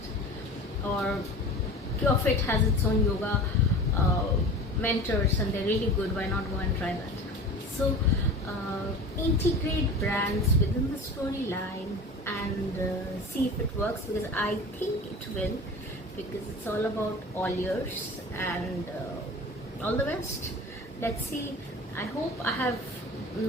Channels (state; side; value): normal; both; correlation 0.36